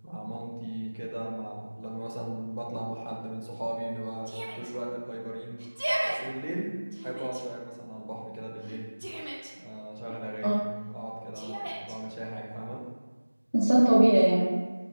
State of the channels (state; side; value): inverted; both; correlation -1.00